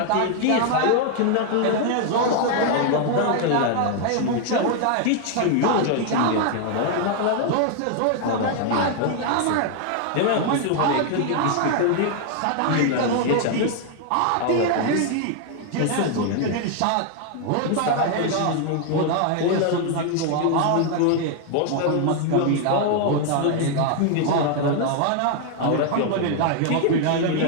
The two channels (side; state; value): both; different; correlation 0.00